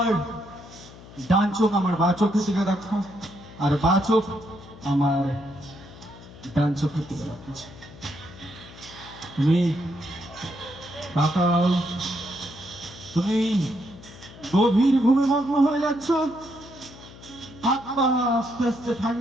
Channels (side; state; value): left; noise; hum, 18 dB below the sound